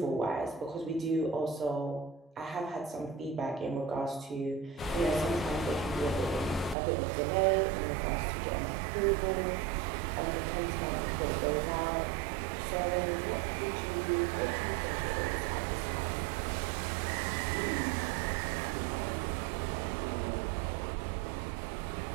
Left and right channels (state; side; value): drops out; left; at 6.8 s